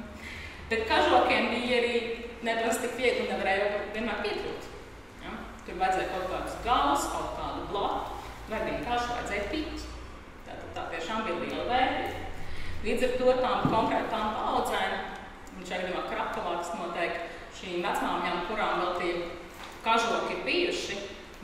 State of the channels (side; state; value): both; identical; correlation 1.00